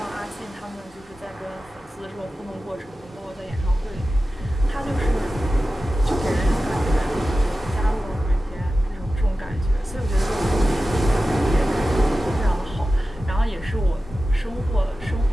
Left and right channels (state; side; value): normal; both; correlation 0.94